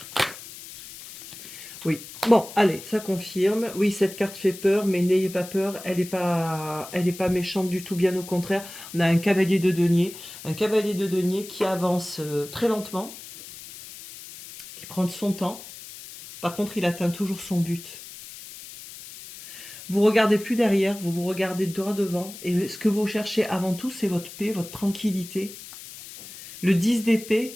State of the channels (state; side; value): noise; left; hiss, 15 dB below the sound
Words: Oui. Bon, allez, ça confirme. Oui, cette carte fait peur, mais n'ayez pas peur. Elle n'est pas méchante du tout, bien au contraire. On a un cavalier de denier. Un cavalier de denier qui avance très lentement, qui prend son temps. Par contre, il atteint toujours son but. Vous regardez plus derrière, vous vous regardez droit devant. Et ce que vous cherchez avant tout, c'est votre paix, votre tranquillité. Le 10